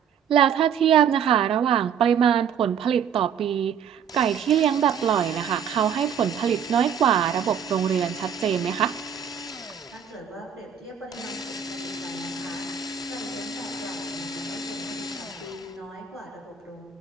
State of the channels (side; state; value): left; quieter; 7.8 dB